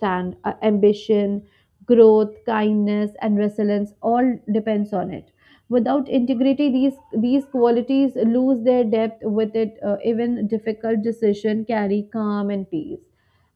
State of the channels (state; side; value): identical; both; correlation 1.00